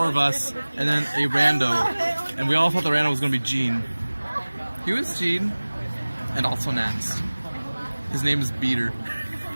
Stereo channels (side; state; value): both; inverted; correlation -1.00